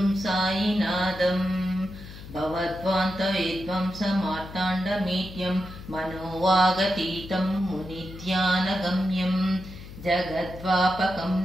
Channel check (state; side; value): noise; left; hum, 14 dB below the sound